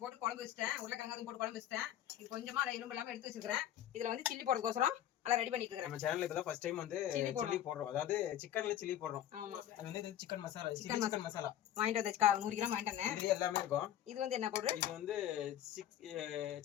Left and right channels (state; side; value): quieter; right; 11.5 dB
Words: போட்டு குழம்பு வச்சிட்டேன். உருளைக்கிழங்கு போட்டு குழம்பு வச்சிட்டேன். இது கொஞ்சமா அதை எலும்பு இல்லாம எடுத்து வச்சிருக்கேன். இதுல வந்து சில்லி போடுறதுக்கோசரம் எல்லாம் ரெடி பண்ணிட்டு இருக்கேன். நம்ம சேனல்ல இப்பதான் ஃபர்ஸ்ட் டைம் வந்து சில்லி போடுறோம். அதாவது சிக்கன்ல சில்லி போடுறோம். ஆமா, அது வந்து இது சிக்கன் மசாலா, சிக்கன் மசாலா வாங்கிட்டு வந்தேன். 100 கிராம் வாங்கிட்டு வந்தேன். இது எல்லாமே இருக்கும். இது வந்து என்ன பவுடர்? இது வந்து